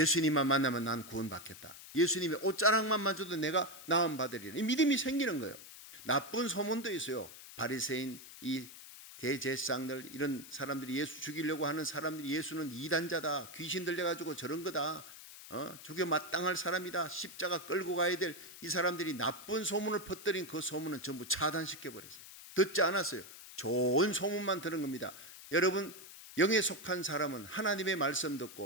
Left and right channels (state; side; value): noise; left; hiss, 15 dB below the sound